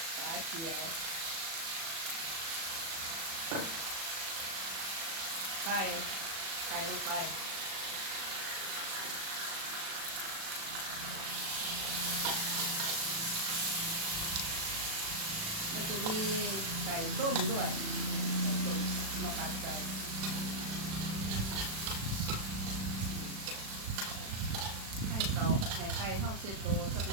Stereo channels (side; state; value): left; late; 36 ms